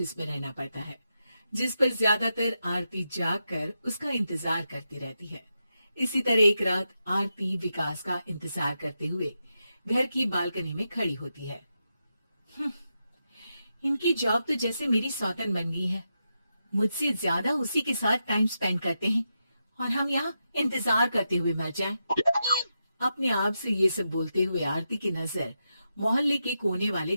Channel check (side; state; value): both; inverted; correlation -0.86